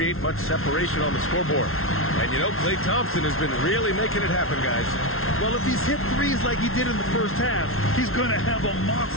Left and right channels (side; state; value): right; late; 0.62 ms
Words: much separation on the scoreboard. And you know, Klay Thompson has been really making it happen, guys. Well, if he's hit threes like he did in the first half, he's going to have a